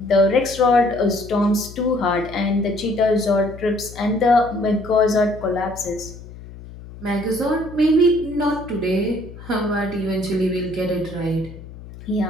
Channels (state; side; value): noise; left; hum, 16 dB below the sound